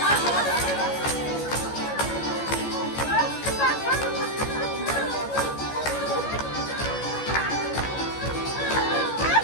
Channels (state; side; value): late; right; 14 ms